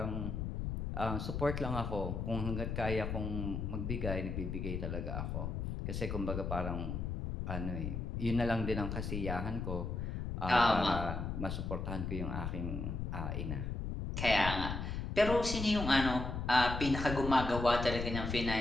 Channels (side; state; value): left; noise; rumble, 3 dB below the sound